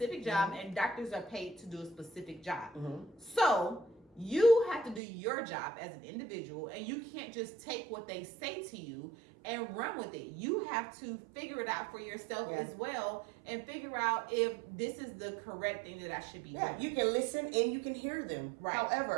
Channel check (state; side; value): drops out; left; at 5.0 s